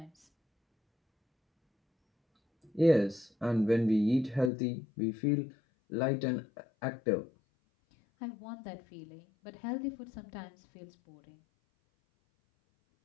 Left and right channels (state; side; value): drops out; right; at 4.5 s